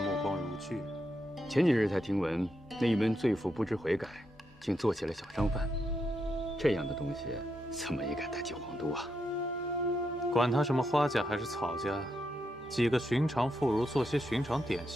光如炬。前几日才听闻，那一门罪妇不知悔改，竟做起了小商贩。这样的东西怎么也敢带进皇都啊？管他什么花家还是草家，几个寻常妇孺做些寻常点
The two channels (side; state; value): both; normal; correlation 0.82